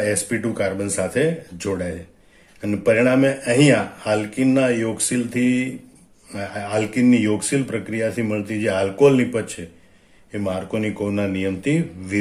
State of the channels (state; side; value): identical; both; correlation 1.00